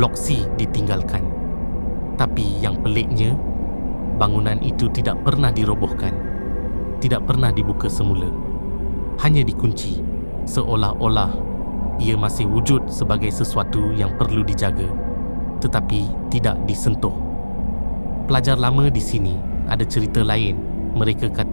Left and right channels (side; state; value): both; inverted; correlation -1.00